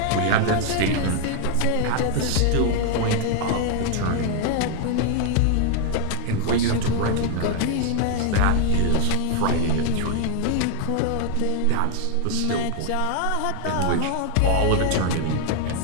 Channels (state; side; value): different; both; correlation 0.00